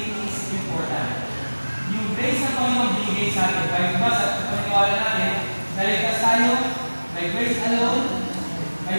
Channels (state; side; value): inverted; both; correlation -1.00